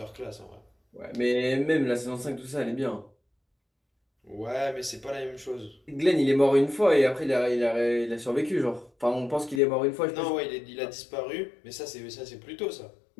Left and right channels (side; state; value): right; drops out; at 9.6 s